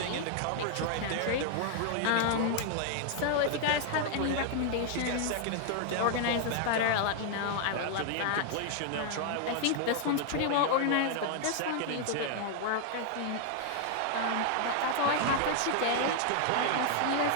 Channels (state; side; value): different; both; correlation 0.00